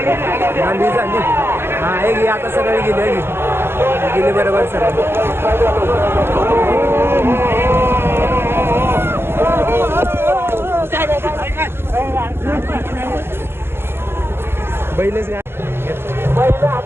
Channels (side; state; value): left; late; 0.11 ms